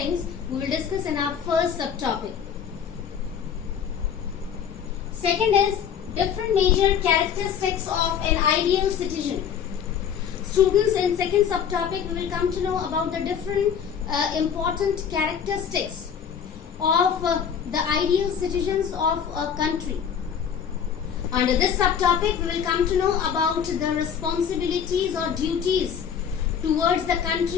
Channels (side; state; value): right; quieter; 7.9 dB